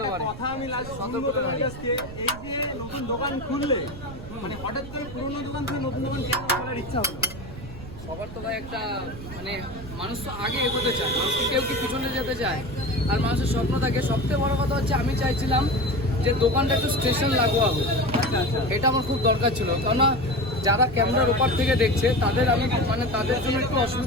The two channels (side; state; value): right; noise; rumble, 13 dB below the sound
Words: পারে। কথা আমি লাস্ট এই যে নতুন দোকান খুললে মানে হঠাৎ করে পুরনো দোকান থেকে নতুন দোকান কেন খোলার ইচ্ছা হলো? সবার তো ভাই একটা মানে মানুষ তো আগে এগোতে চায়, মানুষ কেউ কি পিছনে যেতে চায়। আর মানুষের স্বপ্ন থাকে। সবথেকে বড় কথা হচ্ছে আমি চাইছিলাম যে দোকানটা একটু স্টেশন লাগোয়া হবে। এটা আমার খুব দরকার ছিল, কেননা যারা ক্যামেরার ওপার থেকে দেখছে তাদের আমি মানে তাদের জন্য একটু